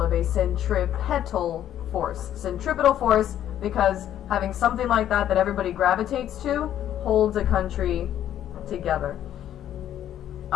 of a centripetal force. Centripetal force because having something like that everybody gravitates to holds a country together?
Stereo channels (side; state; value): right; quieter; 11.1 dB